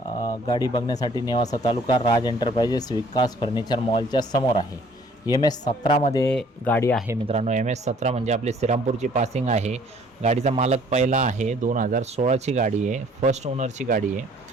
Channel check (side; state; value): both; normal; correlation 0.57